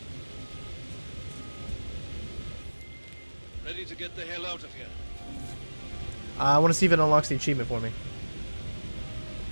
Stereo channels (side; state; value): both; inverted; correlation -1.00